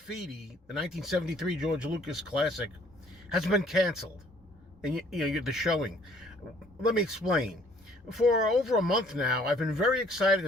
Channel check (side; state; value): both; normal; correlation 0.59